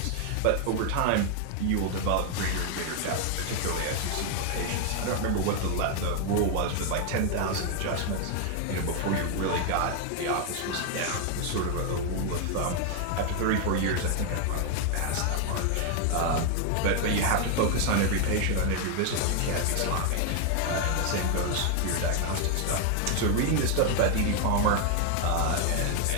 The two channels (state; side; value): different; both; correlation 0.00